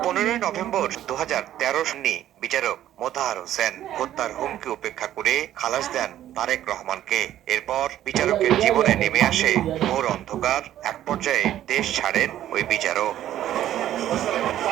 15 November 2013 সালে বিচারক মোতাহার হোসেন হত্যার হুমকি উপেক্ষা করে খালাস দেন তারেক রহমানকে। এরপর বিচারকের জীবনে নেমে আসে ঘোর অন্ধকার। এক পর্যায়ে দেশ ছাড়েন ওই বিচারক।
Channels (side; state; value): left; quieter; 12.2 dB